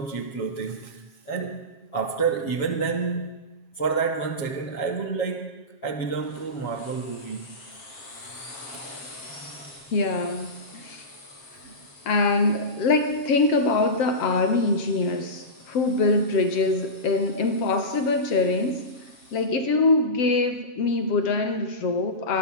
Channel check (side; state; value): right; late; 7.4 ms